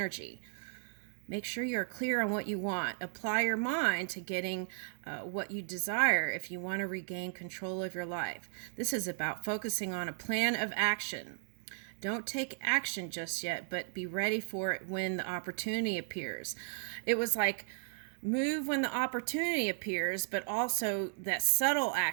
Make sure you're clear on what you want. Apply your mind to getting what you desire if you want to regain control of your life. This is about focusing on a plan of action. Don't take action just yet, but be ready for it when the opportunity appears. It was like move when the opportunity appears, but also that subtle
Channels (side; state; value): left; silent; digital silence